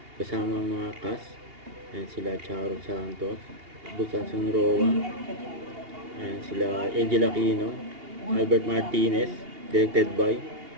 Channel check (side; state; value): left; late; 2.8 ms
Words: Kasama ang mga cast. Yan sila Charo Santos, Busan Sunroa. Yan sila Angel Aquino, Albert Martinez. Directed by